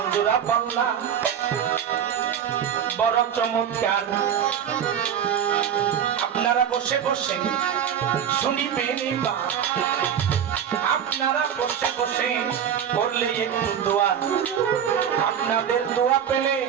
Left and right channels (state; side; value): quieter; left; 8.8 dB